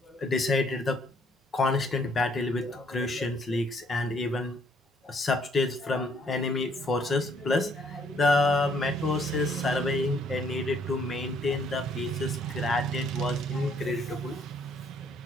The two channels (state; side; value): normal; both; correlation 0.65